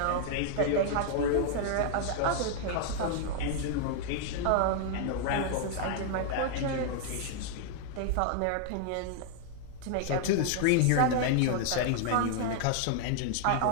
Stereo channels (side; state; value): both; different; correlation 0.00